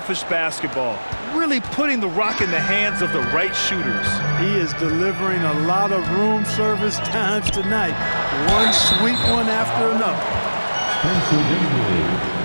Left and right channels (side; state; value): both; inverted; correlation -1.00